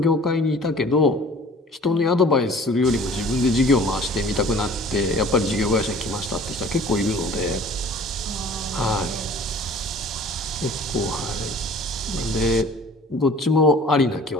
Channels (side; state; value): both; normal; correlation 0.48